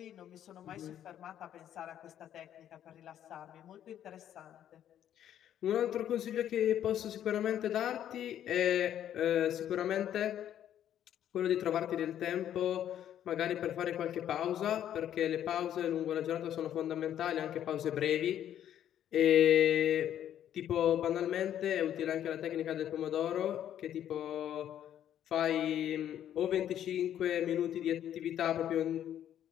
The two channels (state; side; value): quieter; right; 10.7 dB